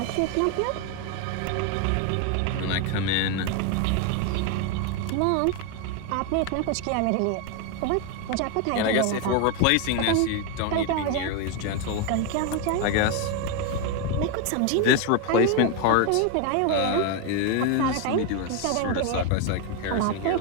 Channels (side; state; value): both; different; correlation 0.01